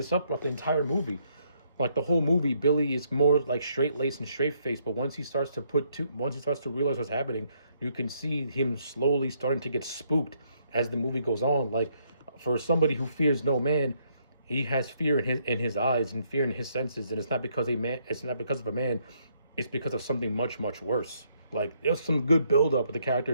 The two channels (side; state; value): both; inverted; correlation -0.72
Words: up the entire movie. Like, the whole movie, Billy is more like straight-laced and straight-faced, but once he starts to realize what's happening, you can see him slowly starting to get spooked as the movie goes on. Like, for somebody who fears no man, he has fear in his eyes and fear in his senses, and it's not because of a man, it's because of something much, much worse. Like, there's some good build-up with the character